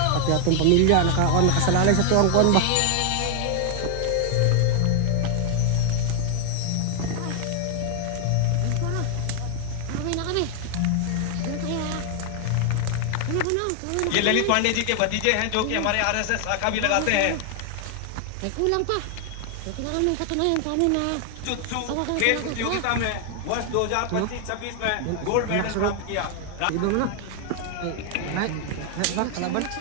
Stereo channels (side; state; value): both; different; correlation 0.00